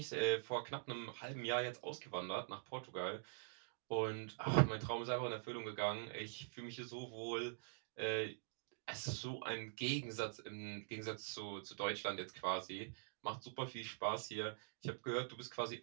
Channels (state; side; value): silent; left; digital silence